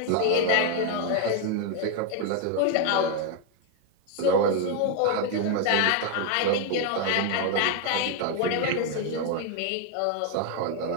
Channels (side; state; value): both; different; correlation 0.01